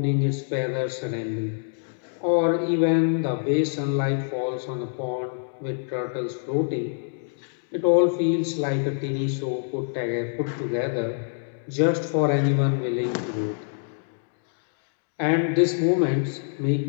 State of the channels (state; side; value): silent; right; digital silence